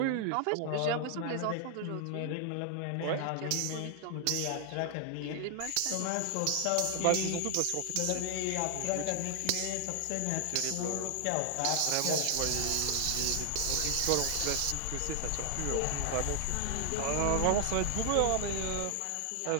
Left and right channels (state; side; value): different; both; correlation 0.00